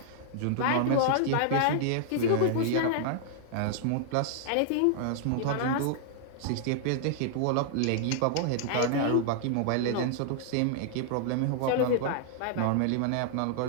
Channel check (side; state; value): both; different; correlation -0.01